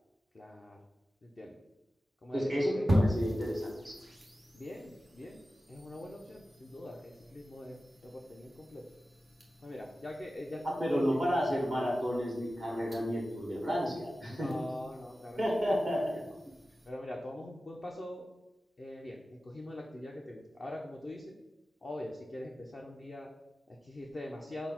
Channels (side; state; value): both; normal; correlation 0.94